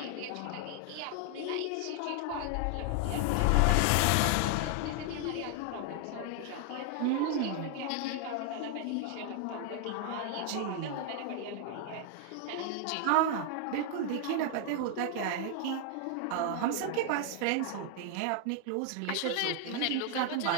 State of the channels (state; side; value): different; both; correlation 0.00